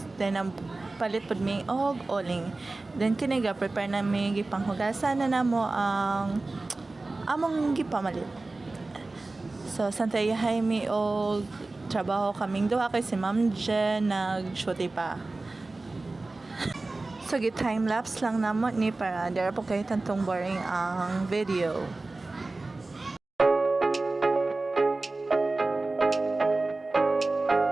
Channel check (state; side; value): quieter; left; 3.2 dB